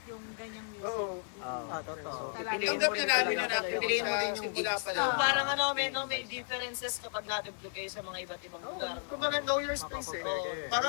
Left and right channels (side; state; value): right; silent; digital silence